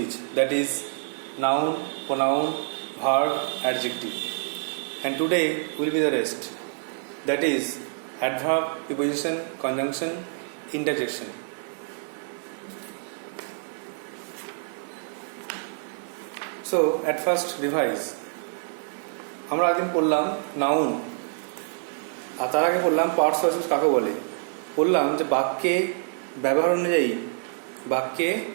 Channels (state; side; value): silent; left; digital silence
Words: that is noun, pronoun, verb, adjective. And today will be the rest, that is adverb, preposition, conjunction, interjection. So at first revise. আমরা একদিন পড়লাম noun, আর তার আগে পড়লাম parts of speech কাকে বলে। বললাম যে বাক্যে